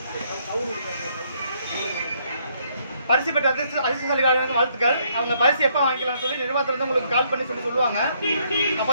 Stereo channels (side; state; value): both; inverted; correlation -0.70